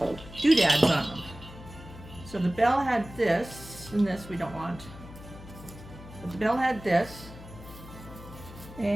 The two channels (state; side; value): noise; left; hum, 16 dB below the sound